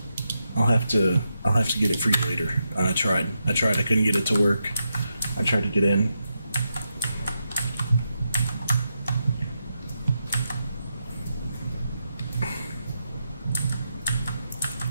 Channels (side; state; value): both; inverted; correlation -0.85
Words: I'll have to get it for you later. I tried. I couldn't get it to work. I tried to get in.